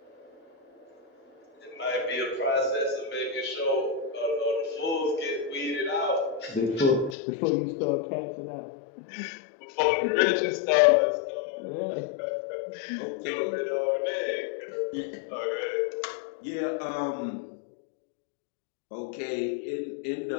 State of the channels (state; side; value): drops out; right; at 7.2 s